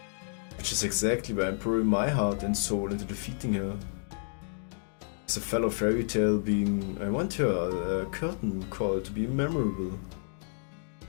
Which is exactly why I'm pouring my heart and soul into defeating her. As a fellow fairy tale being, I want her curtain call to be memorable.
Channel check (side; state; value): right; silent; digital silence